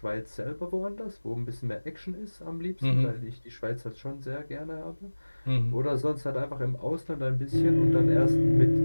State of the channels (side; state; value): both; inverted; correlation -1.00